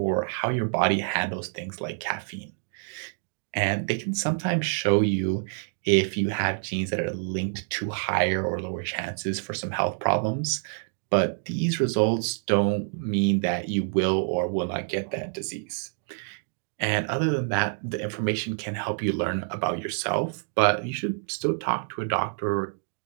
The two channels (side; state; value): left; silent; digital silence